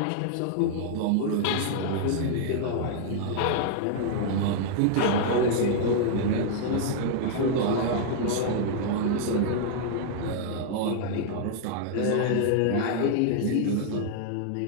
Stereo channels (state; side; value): different; both; correlation -0.01